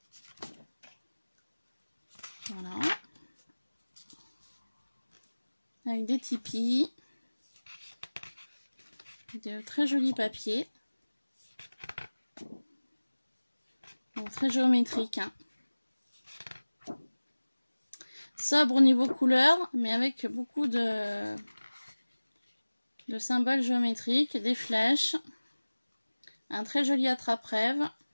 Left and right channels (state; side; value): inverted; both; correlation -1.00